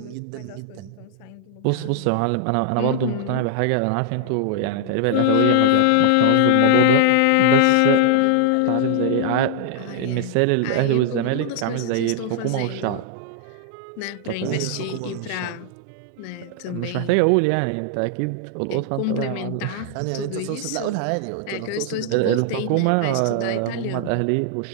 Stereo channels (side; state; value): both; different; correlation 0.00